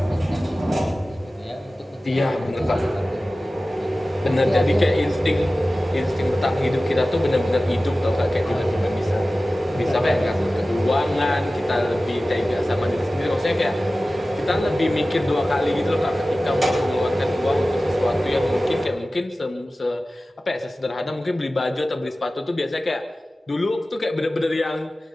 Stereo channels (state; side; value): normal; both; correlation 0.96